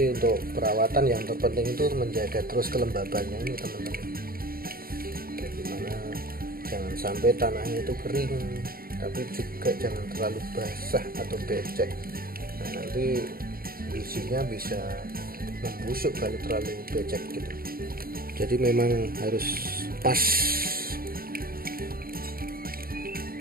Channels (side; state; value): left; late; 0.43 ms